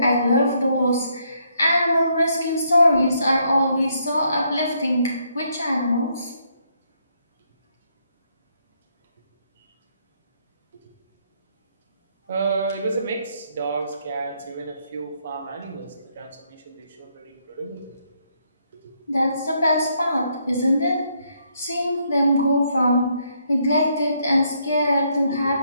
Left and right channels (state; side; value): inverted; both; correlation -0.73